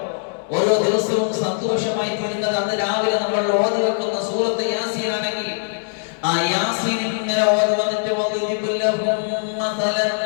ഓരോ ദിവസവും സന്തോഷമായി തീരുന്നത് അന്ന് രാവിലെ നമ്മൾ ഓതി വെക്കുന്ന സൂറത്ത് യാസീൻ ആണെങ്കിൽ ആ യാസീൻ ഇങ്ങനെ ഓതി വന്നിട്ട് വദിബുല്ലഹും മസലൻ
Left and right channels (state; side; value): silent; right; 65 dB below the other